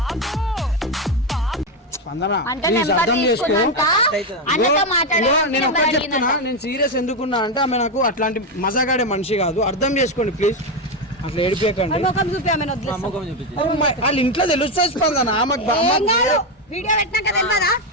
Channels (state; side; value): normal; both; correlation 0.09